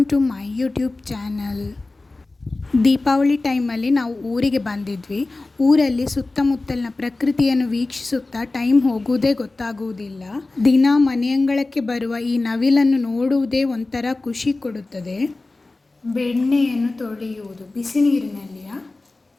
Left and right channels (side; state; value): right; quieter; 3.2 dB